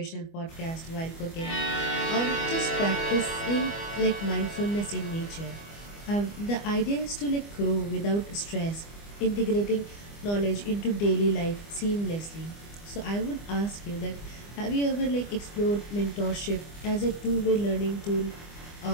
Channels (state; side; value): late; right; 25 ms